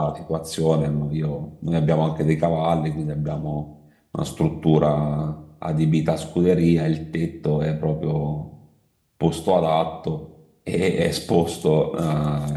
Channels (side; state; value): both; identical; correlation 1.00